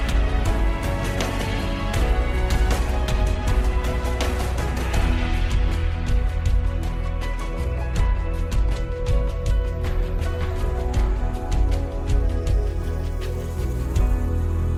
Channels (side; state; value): both; identical; correlation 1.00